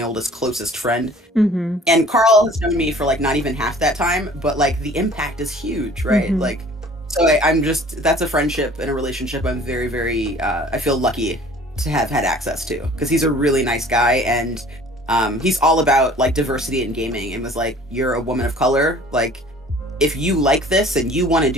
oldest closest friend. And Carl has known me for like not even half that time, but like the impact is huge, right? Like so I'm just, that's a friendship and a relationship I'm very, very I feel lucky to have had access to, because he's a really nice guy, and he's all about like diversity in gaming, and was like, you're a woman of color, like if you like this and you want to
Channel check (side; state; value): both; normal; correlation 0.50